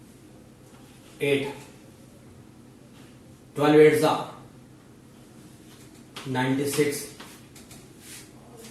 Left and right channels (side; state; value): both; identical; correlation 1.00